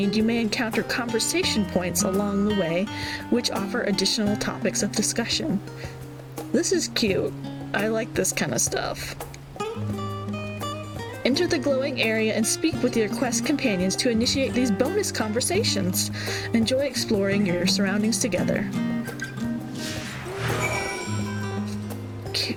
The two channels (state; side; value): identical; both; correlation 1.00